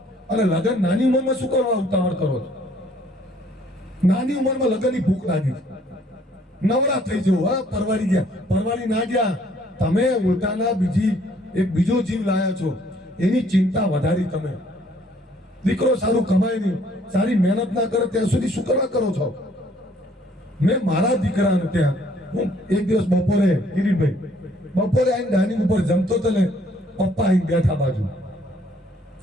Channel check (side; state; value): both; normal; correlation 0.62